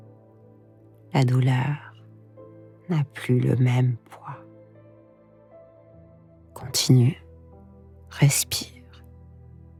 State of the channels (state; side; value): identical; both; correlation 1.00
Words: la douleur n'a plus le même poids. Continue, respire,